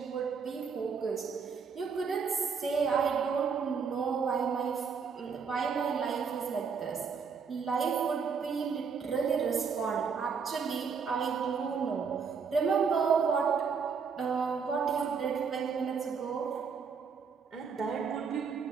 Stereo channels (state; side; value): quieter; left; 5.9 dB